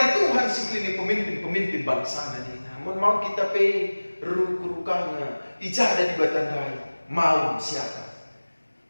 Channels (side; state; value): both; inverted; correlation -1.00